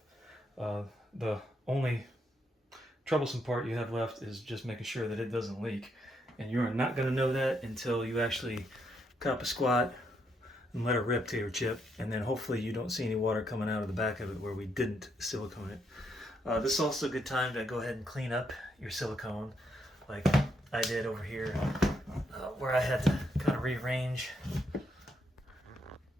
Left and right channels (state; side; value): normal; both; correlation 0.77